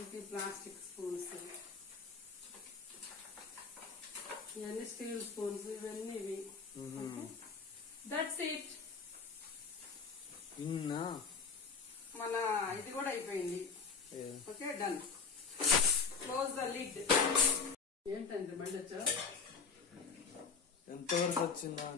ప్లాస్టిక్ స్పూన్స్. ఇవన్నీ స్టీల్ స్పూన్స్, ఇవన్నీ ఇవి. That's it. మన ఇది కూడా అయిపోయింది. Okay, done. Close the lid. ఏంటండి బండి వచ్చా? ఎంతవరకు వచ్చిందా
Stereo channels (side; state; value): right; quieter; 5.3 dB